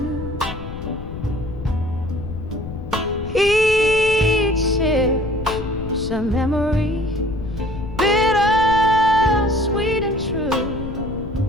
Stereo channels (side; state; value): left; noise; rumble, 9 dB below the sound